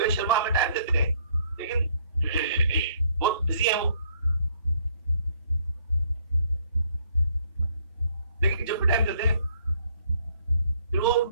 शर्मा हमें टाइम देते हैं, लेकिन बहुत बिजी है वो, लेकिन जब भी टाइम देते हैं फिर वो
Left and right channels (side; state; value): both; inverted; correlation -0.65